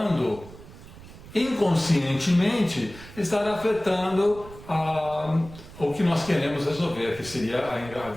inconscientemente, o que nós queremos resolver, que seria a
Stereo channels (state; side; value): noise; right; rumble, 17 dB below the sound